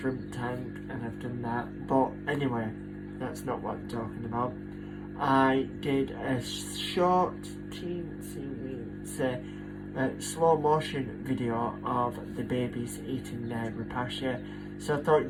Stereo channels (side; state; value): both; identical; correlation 1.00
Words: tank and I've done that. But anyway, that's not what I'm talking about. I did a short slow motion video of the babies eating their Repasha, so I